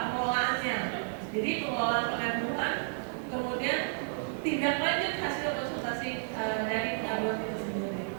pengelolaannya. Jadi pengelolaan pengaduan, kemudian tindak lanjut hasil konsultasi dari pengaduan itu sendiri.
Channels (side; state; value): left; silent; digital silence